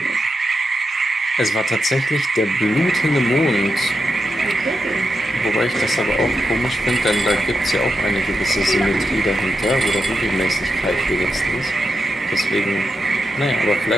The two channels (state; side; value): normal; both; correlation 0.87